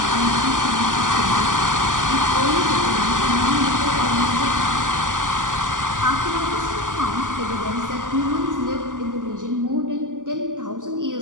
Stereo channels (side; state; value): left; late; 0.88 ms